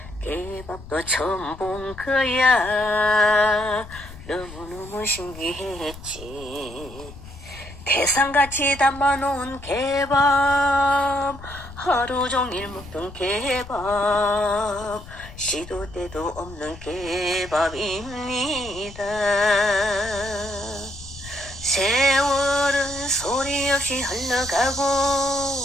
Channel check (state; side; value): noise; left; rumble, 16 dB below the sound